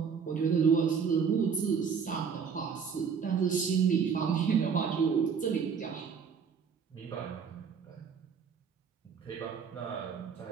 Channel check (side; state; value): left; quieter; 6.4 dB